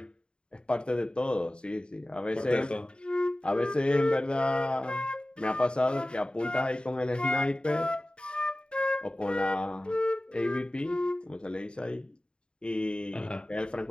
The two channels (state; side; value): late; right; 0.051 ms